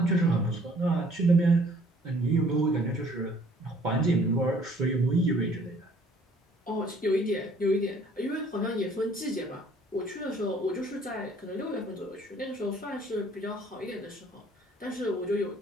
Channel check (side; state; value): both; normal; correlation 0.58